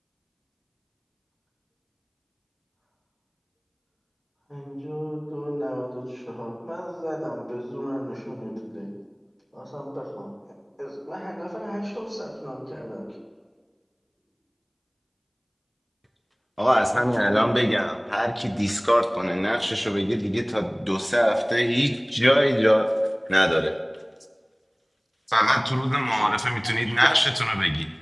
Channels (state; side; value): identical; both; correlation 1.00